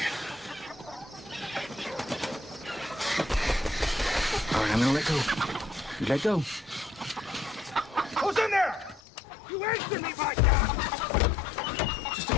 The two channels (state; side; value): drops out; right; at 9.0 s